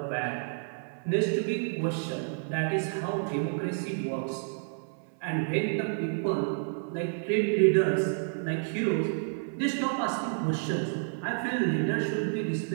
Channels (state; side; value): silent; left; 58 dB below the other